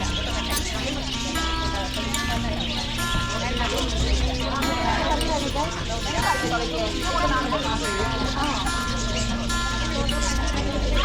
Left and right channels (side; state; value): both; identical; correlation 1.00